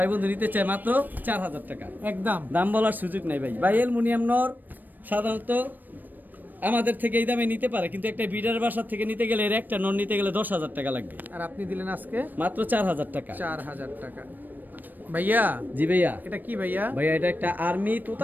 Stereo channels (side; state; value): left; late; 0.089 ms